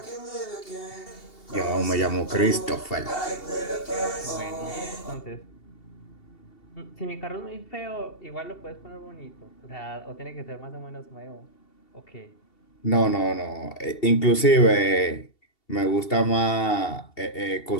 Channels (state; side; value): late; right; 2.7 ms